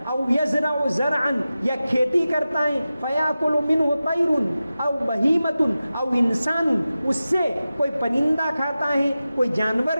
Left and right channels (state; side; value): inverted; both; correlation -0.94